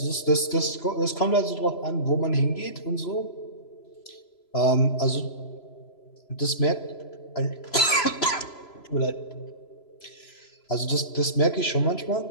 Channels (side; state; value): right; late; 3.0 ms